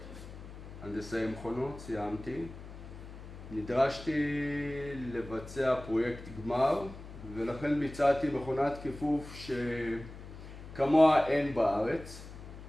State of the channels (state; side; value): noise; left; hum, 14 dB below the sound